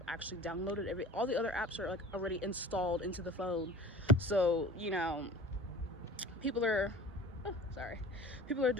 actually downloaded. All the other apps are like already installed into the phone. So people are people are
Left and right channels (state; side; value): normal; both; correlation 0.42